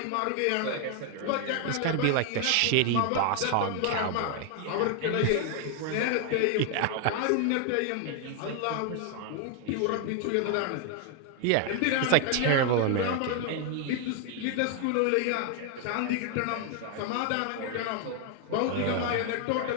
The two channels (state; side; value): different; both; correlation 0.01